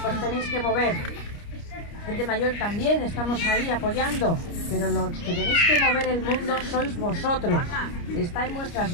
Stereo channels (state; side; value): late; right; 29 ms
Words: tenéis que mover. Gente mayor también, estamos ahí apoyando, pero los que tenéis que mover el mundo sois vosotros. Está en vuestras